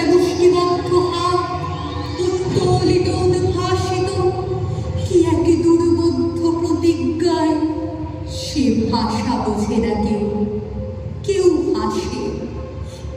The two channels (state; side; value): identical; both; correlation 1.00